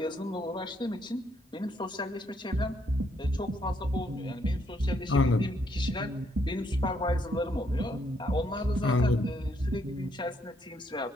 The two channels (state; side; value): normal; both; correlation 0.73